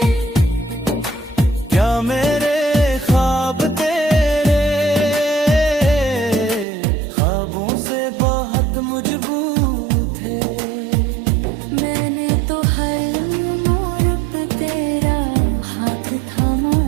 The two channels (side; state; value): left; drops out; at 6.7 s